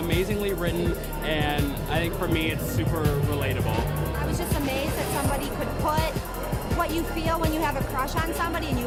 written, and I think for me it's super relatable. I was just amazed that somebody could put what you feel when you have a crush on somebody and you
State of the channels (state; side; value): identical; both; correlation 1.00